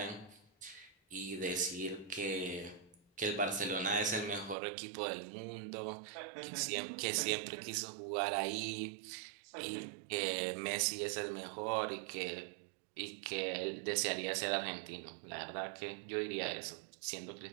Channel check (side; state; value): left; drops out; at 4.5 s